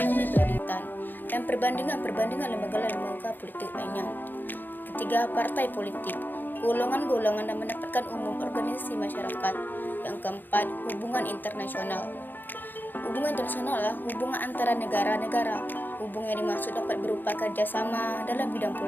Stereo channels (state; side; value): late; right; 0.090 ms